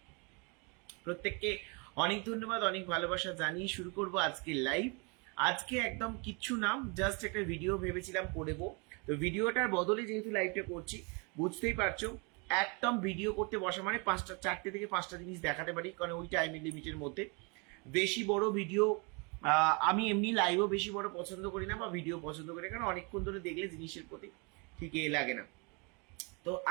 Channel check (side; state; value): left; quieter; 32.1 dB